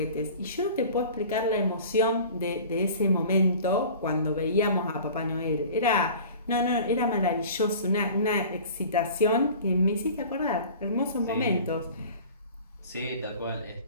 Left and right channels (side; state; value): both; inverted; correlation -0.42